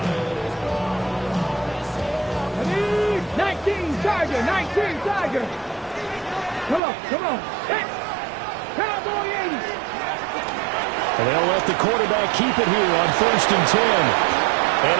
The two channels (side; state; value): left; drops out; at 6.8 s